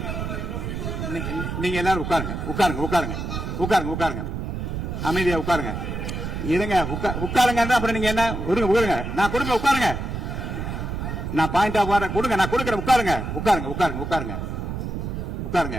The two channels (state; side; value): noise; right; rumble, 4 dB below the sound